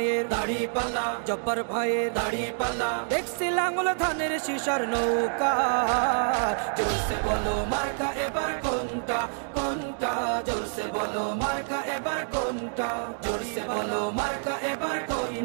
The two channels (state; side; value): silent; left; digital silence